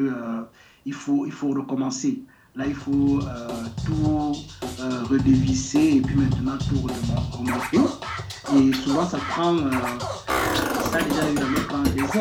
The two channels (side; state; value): both; identical; correlation 1.00